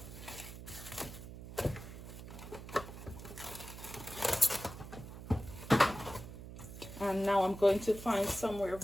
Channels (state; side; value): noise; right; hum, 12 dB below the sound